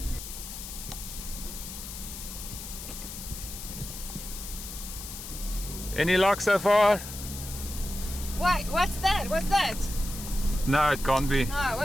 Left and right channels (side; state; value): left; noise; hiss, 10 dB below the sound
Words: Any luck so far? Wait, what's that? What's that? No, it can't be. No,